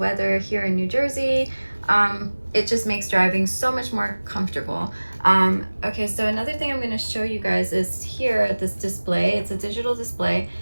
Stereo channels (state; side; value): inverted; both; correlation -1.00